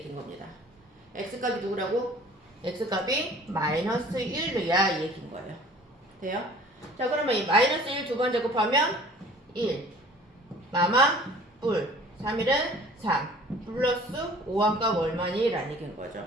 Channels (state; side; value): normal; both; correlation 0.49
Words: 겁니다. x값이 누구라고? x값이 마이너스 1이야 이 얘기인 거예요. 돼요? 자 그러면 이 마이너스 1 두 번 제곱하면 1 마마 뿔 3일은 3 플러스 5항값 얼마니? 라는 얘기인 거죠.